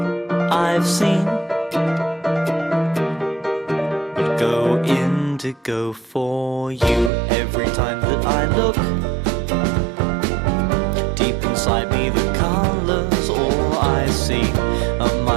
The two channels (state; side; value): drops out; left; at 7.1 s